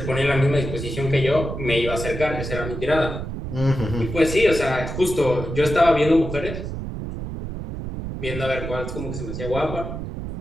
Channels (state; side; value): noise; right; rumble, 6 dB below the sound